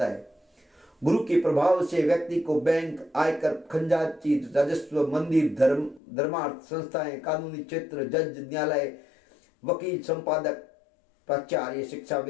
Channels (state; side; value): drops out; right; at 6.0 s